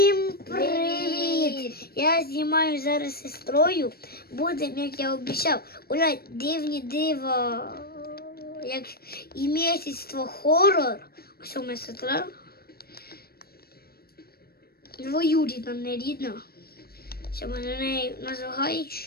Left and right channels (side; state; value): right; late; 0.45 ms